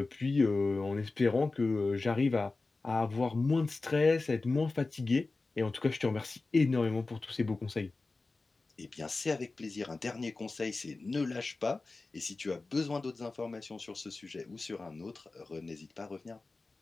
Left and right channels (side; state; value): right; quieter; 3.6 dB